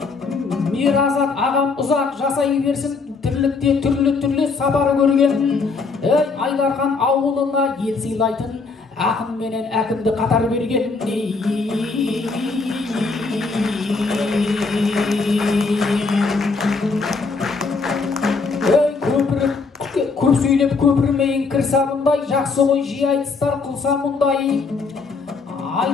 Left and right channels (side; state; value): right; quieter; 4.4 dB